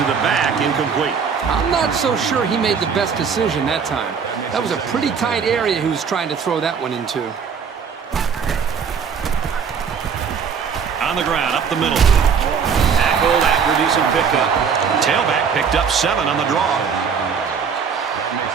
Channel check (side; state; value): left; quieter; 6.4 dB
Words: the back, incomplete. I'm not so sure he made the best decision that time. That was a pretty tight area he was trying to throw that one into. On the ground, up the middle. Tackled after a decent pickup. Tailback picked up 7 on the draw.